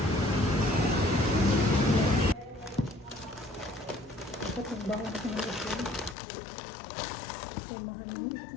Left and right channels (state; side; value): drops out; right; at 6.2 s